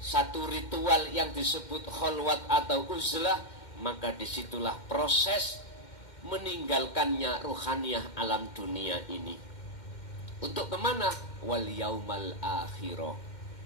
satu ritual yang disebut kholwat atau uzlah, maka disitulah proses meninggalkannya ruhaniyah alam dunia ini. Untuk kemana? Wal yaumal akhirah,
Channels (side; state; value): right; late; 2.1 ms